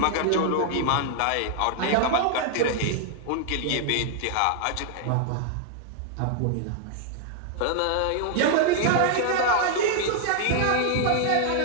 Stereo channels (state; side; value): different; both; correlation 0.00